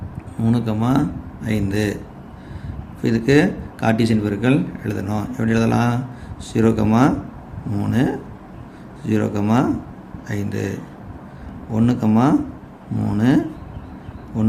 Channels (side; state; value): both; identical; correlation 1.00